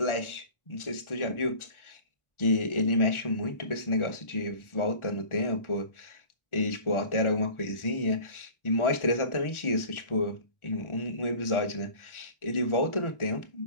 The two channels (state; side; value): late; right; 1.4 ms